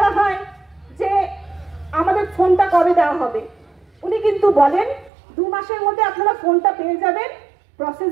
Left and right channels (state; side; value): drops out; left; at 5.1 s